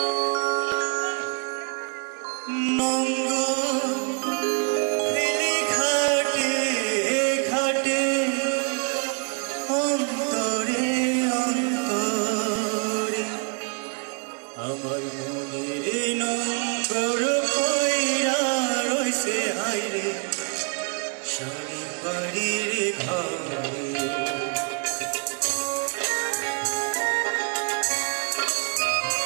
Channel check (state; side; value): quieter; left; 37.5 dB